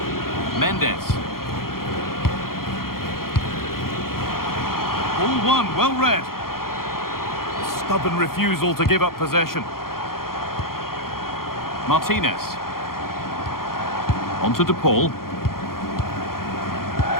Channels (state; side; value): late; right; 0.92 ms